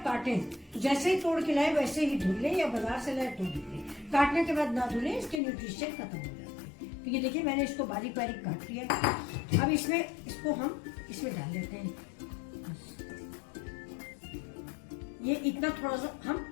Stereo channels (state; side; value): drops out; right; at 5.4 s